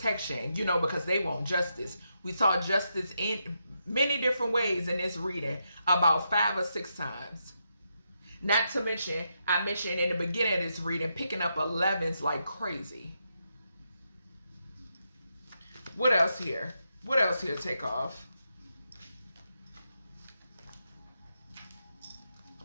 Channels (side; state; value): both; inverted; correlation -0.83